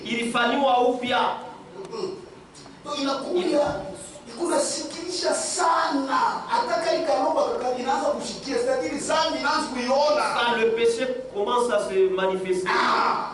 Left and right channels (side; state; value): both; identical; correlation 1.00